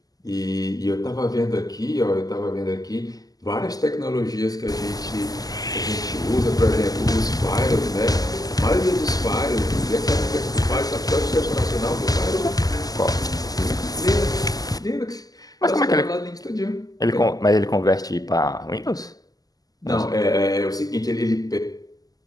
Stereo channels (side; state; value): right; late; 0.18 ms